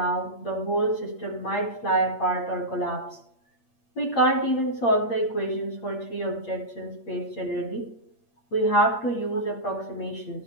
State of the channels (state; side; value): late; right; 8.6 ms